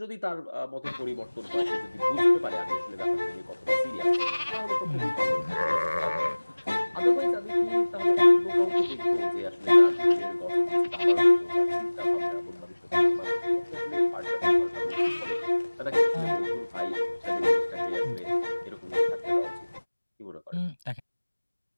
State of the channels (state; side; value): inverted; both; correlation -1.00